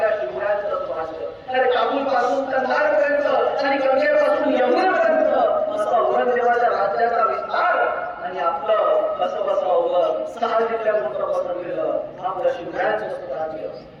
शिवरायांचं स्वराज्य. अरे काबूल पासून कंधार पर्यंत आणि गंगेपासून यमुनेपर्यंत असं औरंगजेबाच्या राज्याचा विस्तार आणि आपलं कसं बसवलं 6 जिल्ह्यात पसरलेलं आपलं शिवरायांचं स्वराज्य.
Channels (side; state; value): both; identical; correlation 1.00